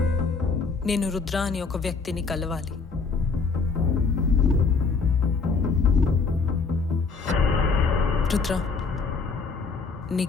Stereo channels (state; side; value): quieter; right; 4.6 dB